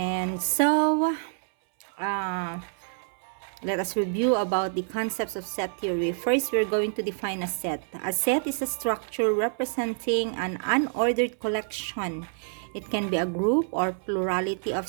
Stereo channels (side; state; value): left; silent; 60 dB below the other